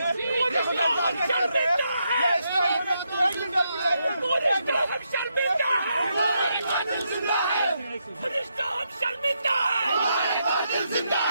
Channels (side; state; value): both; inverted; correlation -0.80